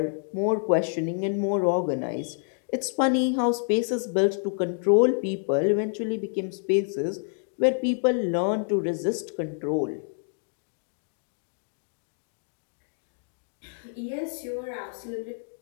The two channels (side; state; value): right; silent; digital silence